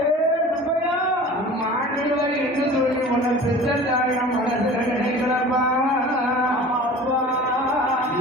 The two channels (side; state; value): both; normal; correlation 0.41